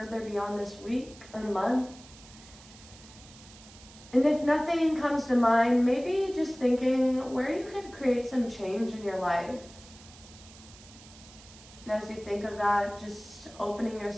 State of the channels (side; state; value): right; noise; hiss, 20 dB below the sound